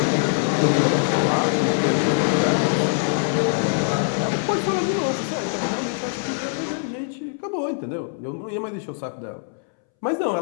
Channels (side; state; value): right; silent; 63 dB below the other